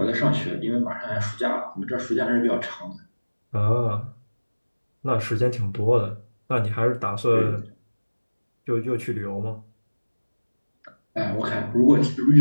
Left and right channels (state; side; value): inverted; both; correlation -1.00